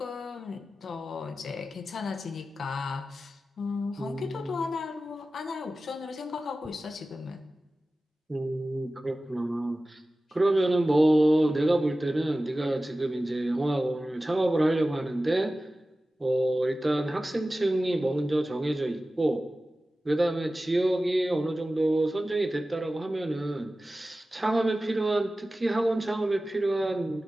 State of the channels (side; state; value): both; normal; correlation 0.95